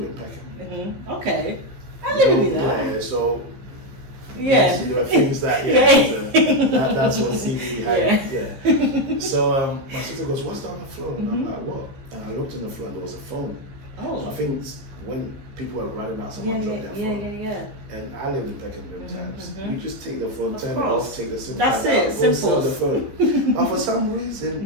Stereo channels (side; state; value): left; late; 15 ms